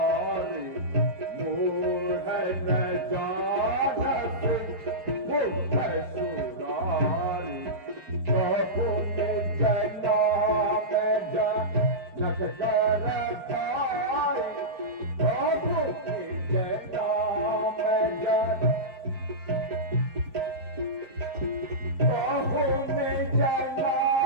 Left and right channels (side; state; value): left; late; 5.3 ms